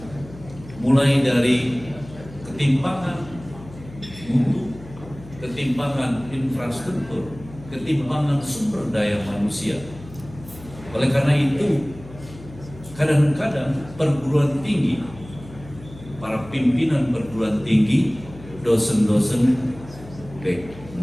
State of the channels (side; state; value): left; noise; hum, 17 dB below the sound